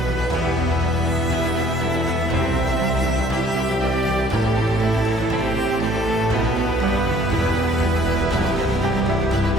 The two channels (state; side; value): normal; both; correlation 0.58